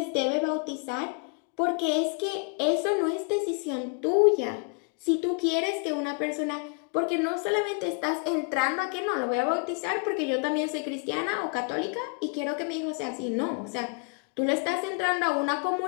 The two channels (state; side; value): quieter; right; 36.3 dB